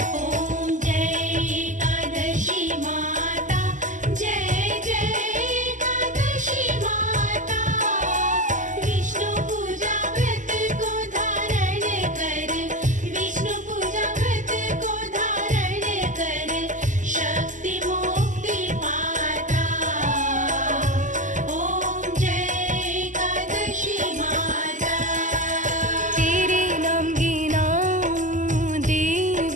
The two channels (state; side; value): late; left; 0.37 ms